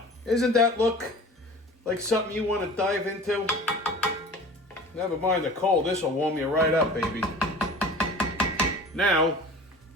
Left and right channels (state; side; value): normal; both; correlation 0.40